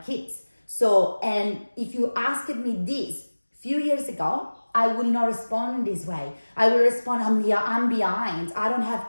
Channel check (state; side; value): inverted; both; correlation -1.00